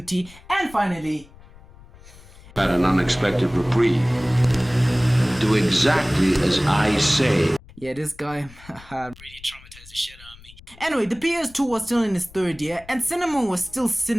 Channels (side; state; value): left; noise; rumble, 22 dB below the sound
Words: and finally... Had an unexpected reprieve. Do exactly as I say. Yeah, this guy really traumatized the shit out of me. Anyway, the PS2 was still in its third year, and cinema was still